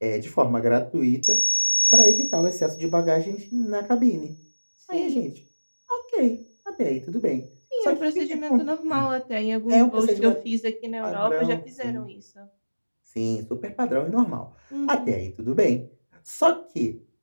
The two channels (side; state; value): both; inverted; correlation -1.00